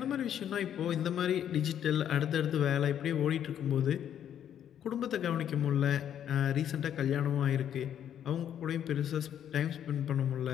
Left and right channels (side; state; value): right; quieter; 9.8 dB